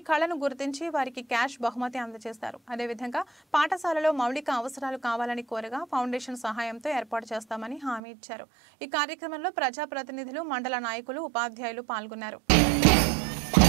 కళను గుర్తించి వారికి క్యాష్ బహుమతి అందజేశారు। అదేవిధంగా పాఠశాలలో మౌలిక అవసరాలు కావాలని కోరగా ఫౌండేషన్ సహాయంతో ఏర్పాటు చేస్తామని హామీ ఇచ్చారు। ఈ కార్యక్రమంలో ప్రజాప్రతినిధులు మండల నాయకులు ఉపాధ్యాయులు పాల్గొన్నారు।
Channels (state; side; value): drops out; left; at 8.0 s